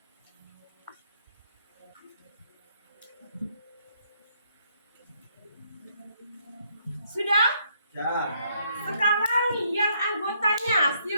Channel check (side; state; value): both; inverted; correlation -0.71